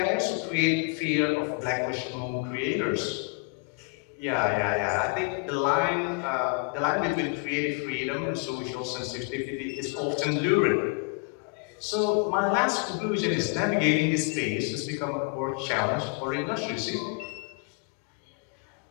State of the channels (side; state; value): right; quieter; 32.2 dB